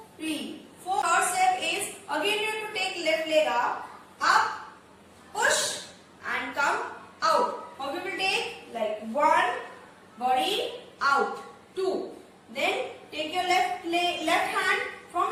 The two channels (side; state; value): both; identical; correlation 1.00